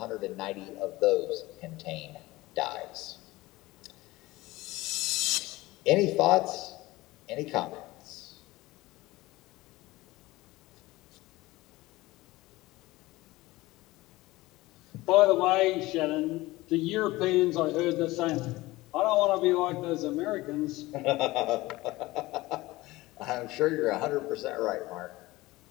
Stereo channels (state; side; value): quieter; right; 19.5 dB